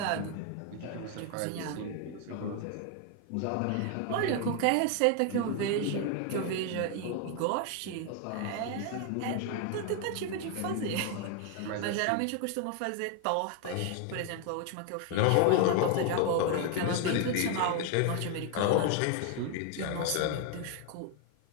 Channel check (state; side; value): different; both; correlation 0.00